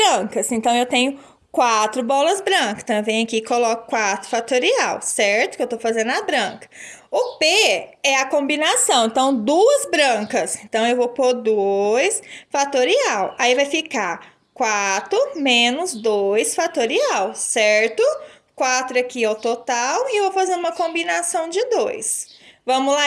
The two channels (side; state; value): both; identical; correlation 1.00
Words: Então, eu tenho 4 bolas brancas. Então, eu venho aqui e coloco 4 fatorial, certo? Que eu tô fazendo a branca. O P é a combinação, então 2 brancas. Então, eu vou pôr 2 fatorial. Aí, vai ficar 4 menos 2 fatorial, certo? 4 aqui é o total e eu vou fazer uma combinação de 2. Vamos